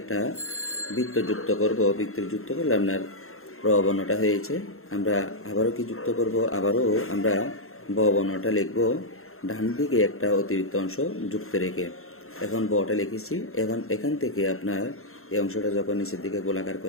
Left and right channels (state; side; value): late; right; 0.62 ms